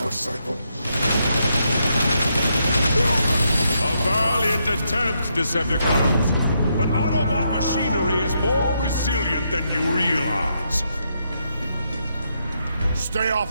cycle. A valiant attempt, Decepticons! But Autobot machinery is more resilient than you realize. Stay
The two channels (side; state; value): both; inverted; correlation -0.79